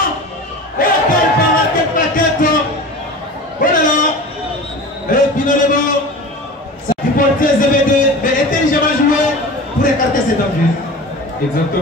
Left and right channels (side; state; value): both; normal; correlation 0.35